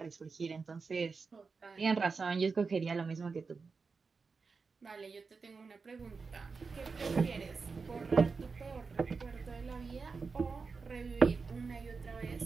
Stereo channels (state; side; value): quieter; left; 4.7 dB